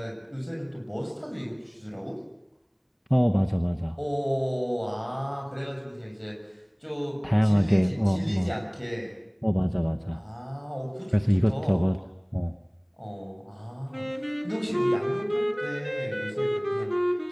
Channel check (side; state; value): both; identical; correlation 1.00